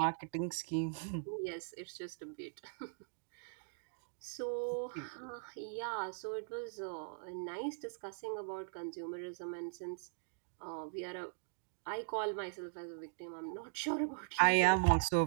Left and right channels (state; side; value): silent; left; digital silence